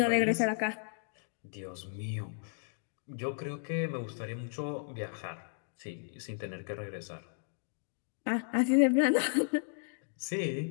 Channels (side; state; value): right; silent; digital silence